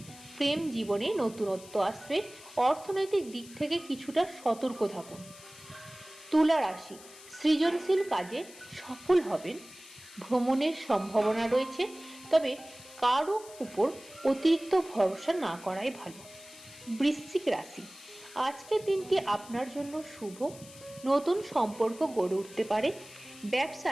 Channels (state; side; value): noise; left; hiss, 19 dB below the sound